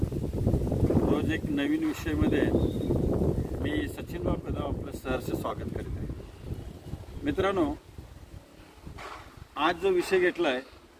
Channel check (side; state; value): both; identical; correlation 1.00